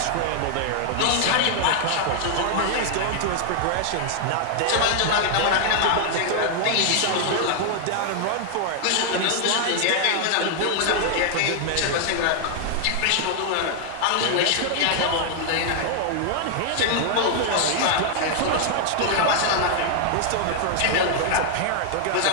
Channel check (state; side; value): different; both; correlation 0.00